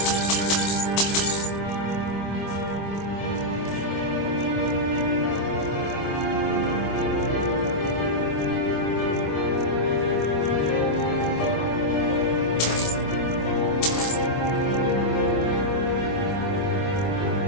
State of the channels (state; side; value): late; right; 25 ms